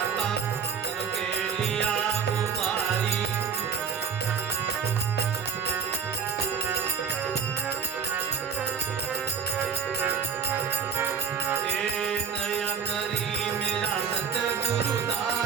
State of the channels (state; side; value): quieter; left; 6.6 dB